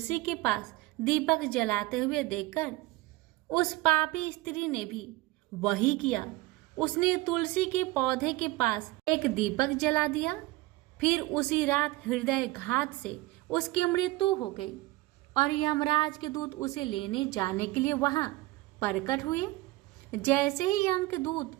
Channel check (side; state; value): left; quieter; 19.4 dB